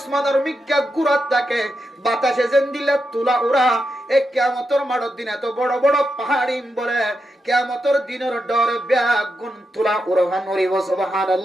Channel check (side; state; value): both; normal; correlation 0.86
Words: মিক্কা গুড়াত থাকে, বাতাসে যেন দিলে তুলা উড়া। এ কিয়ামতের মাঠের দিন এত বড় বড় পাহাড়ি বলে কিয়ামতের দিনের ডরে ব্যাগুন তুলা উড়ান উড়িব।